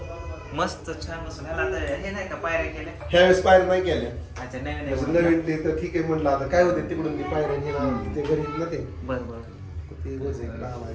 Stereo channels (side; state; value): both; identical; correlation 1.00